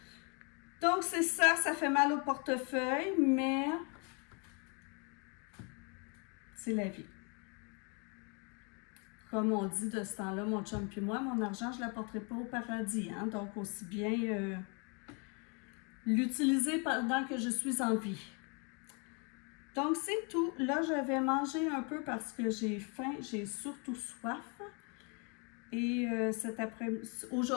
Donc, c'est ça, ça fait mal au portefeuille, mais c'est la vie. Comme on dit de ce temps-là, mon chum puis moi, mon argent, je ne l'apporterai pas au paradis. Hein? Donc, aussi bien l'utiliser pendant que je suis en vie. Donc, c'est tout. Là, je vais manger un peu parce que j'ai faim, j'ai surtout soif. Et cet après-midi,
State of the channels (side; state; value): right; quieter; 34.5 dB